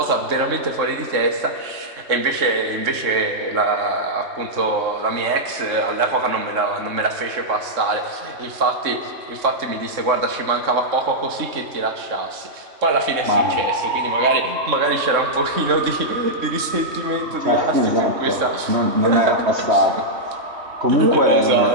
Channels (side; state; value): left; late; 3.6 ms